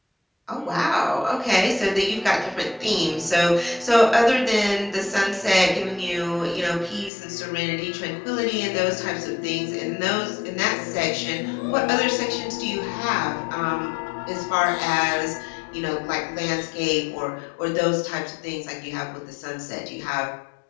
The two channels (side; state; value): right; drops out; at 7.1 s